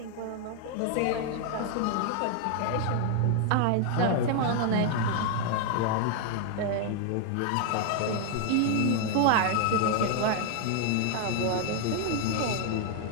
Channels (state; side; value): different; both; correlation 0.00